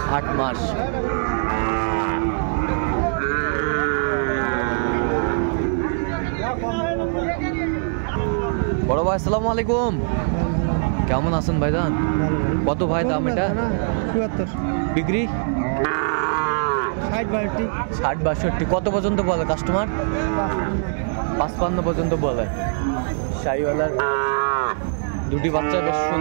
8 মাস। বড় ভাই আসসালামু আলাইকুম, কেমন আছেন ভাইজান? কত ভাই দাম এটা? 74। বিক্রি 60-62। কত পর্যন্ত বলে কাস্টমার? 55 পর্যন্ত বলে। শাহিওয়ালার দুটি বাচ্চা বেশ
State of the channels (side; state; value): left; silent; digital silence